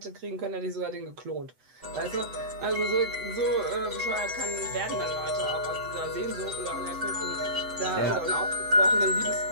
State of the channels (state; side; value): late; left; 7.9 ms